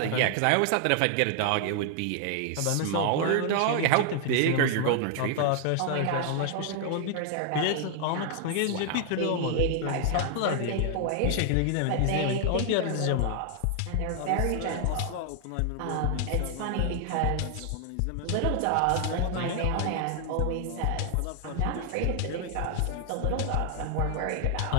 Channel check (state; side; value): different; both; correlation 0.00